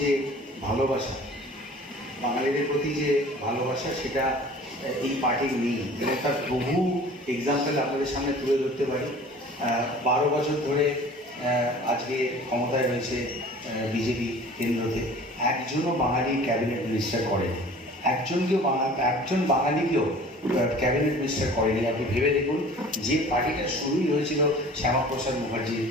যে ভালোবাসা সেটা এই পার্টির নেই, এবং তার বহু এক্সাম্পল আপনাদের সামনে তুলে ধরতে পারি। 12 বছর ধরে আজকে ক্ষমতায় রয়েছে বিজেপি কেন্দ্রতে, একজনও বাঙালি ক্যাবিনেট মিনিস্টার করেনি, একজন বাঙালিকেও ক্যাবিনেট মিনিস্টার করেনি। আপনি ভেবে দেখুন, যে পার্টিটা শুরুই হয়েছিল শ্যামাপ্রসাদ মুখার্জির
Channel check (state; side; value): normal; both; correlation 0.46